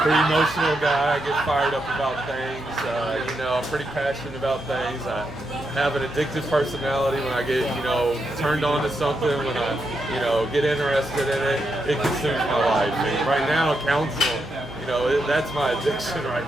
Pretty emotional guy. I get fired up about things. I'm pretty passionate about things. I have an addictive personality. When I get, turned on to something, when I, get interested in it, it consumes my life. And right now, counsel, that's my addiction right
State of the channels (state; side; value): noise; right; hum, 17 dB below the sound